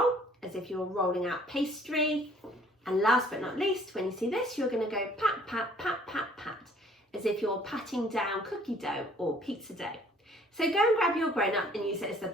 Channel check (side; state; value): both; normal; correlation 0.57